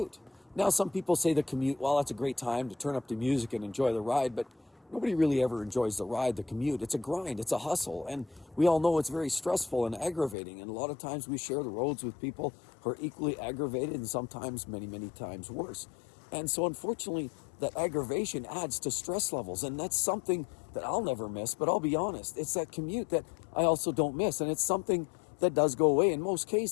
Now, some people say the commute, well, that's a great time to turn up the music and enjoy the ride, but nobody really ever enjoys the ride, the commute. It's a grind, it's a hustle, and we all know it's very stressful and aggravating, and a lot of times we share the roads with people who are equally aggravated and sometimes many, many times worse. And so unfortunately, that aggravation adds to stress levels, and that's something that I'll never miss, but I'll be honest, it's that commute that I also don't miss, and it's something that does go away in most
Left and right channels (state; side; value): drops out; right; at 10.4 s